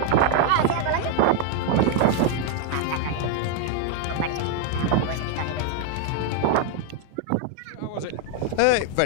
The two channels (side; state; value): both; different; correlation 0.01